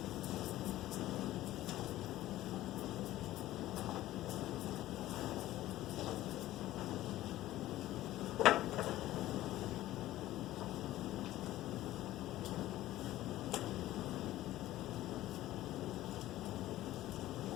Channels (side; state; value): right; quieter; 15.1 dB